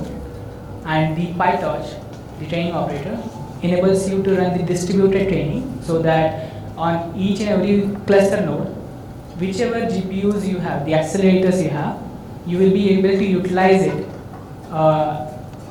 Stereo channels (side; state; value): both; identical; correlation 1.00